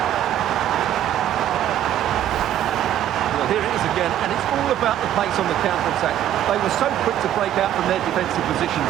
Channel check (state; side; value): quieter; left; 11.4 dB